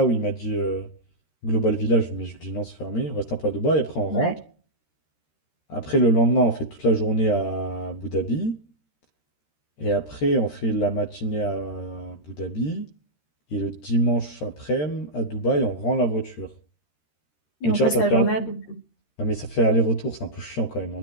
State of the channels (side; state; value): right; late; 13 ms